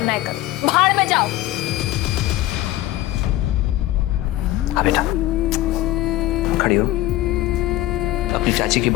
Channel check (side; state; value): right; quieter; 16.0 dB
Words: है कर, भाड़ में जाओ। आ बेटा, खड़ी हो। अपनी चाची की